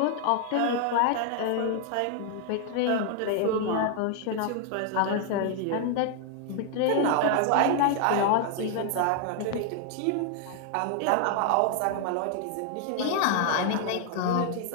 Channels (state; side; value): different; both; correlation 0.00